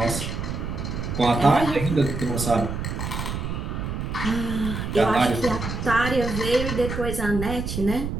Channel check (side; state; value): right; noise; rumble, 4 dB below the sound